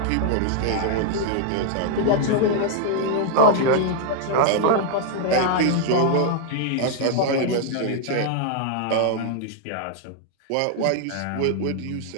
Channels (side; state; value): both; different; correlation 0.00